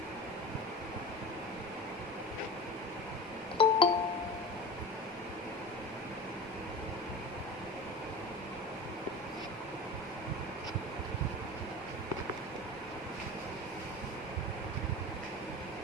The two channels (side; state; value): both; normal; correlation 0.32